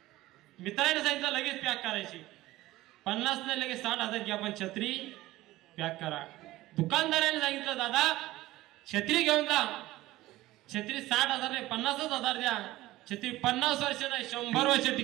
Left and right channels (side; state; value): left; quieter; 17.2 dB